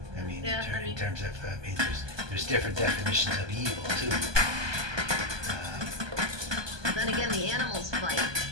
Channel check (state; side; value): late; left; 1.2 ms